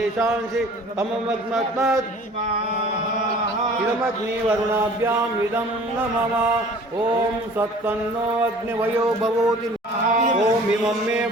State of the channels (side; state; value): both; normal; correlation 0.48